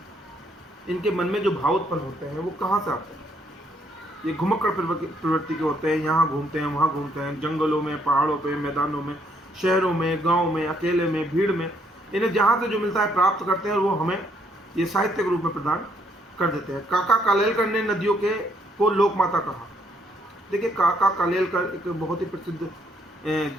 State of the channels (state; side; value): normal; both; correlation 0.70